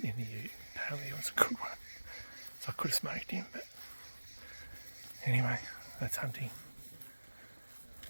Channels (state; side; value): inverted; both; correlation -1.00